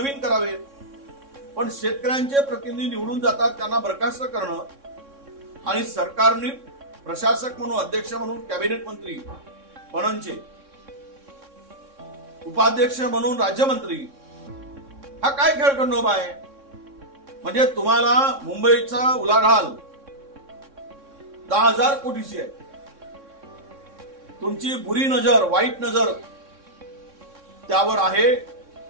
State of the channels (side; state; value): left; late; 3.6 ms